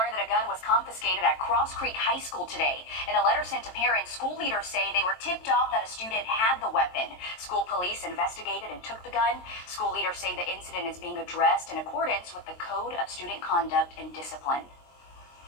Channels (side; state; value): right; late; 23 ms